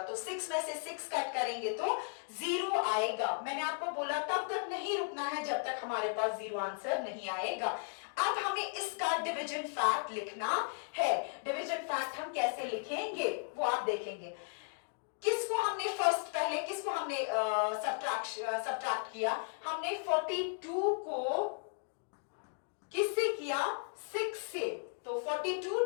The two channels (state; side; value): silent; right; 54 dB below the other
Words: 6 में से 6 काट करेंगे तो 0 आएगा। मैंने आपको बोला तब तक नहीं रुकना है जब तक हमारे पास 0 आंसर नहीं आएगा। अब हमें इसका डिवीजन फैक्ट लिखना है। डिवीजन फैक्ट हम कैसे लिखेंगे वो आप देखेंगे। किसको हमने फर्स्ट, पहले किसको हमने सब्ट्रैक्ट किया? हमने 42 को किससे किया? 6 से। तो 42